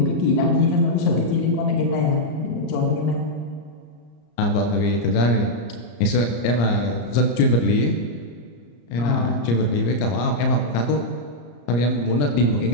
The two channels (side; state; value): right; late; 34 ms